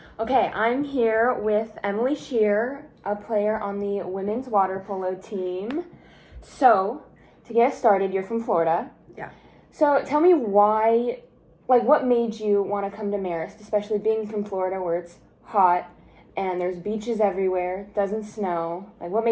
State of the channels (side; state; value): both; identical; correlation 1.00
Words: Okay, I'm here with Emily Scheerer, a player on the women's water polo team. So, to get us started, you're from Florida. Yeah. So, tell me why, what made you want to come to Marist, especially being from Florida where it's hot and there's beaches everywhere, doesn't snow. What